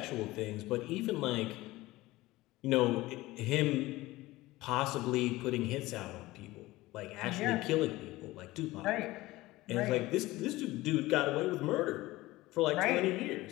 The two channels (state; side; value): quieter; right; 18.7 dB